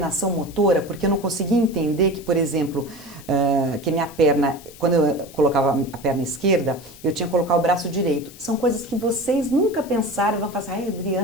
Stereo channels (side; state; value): left; noise; hiss, 20 dB below the sound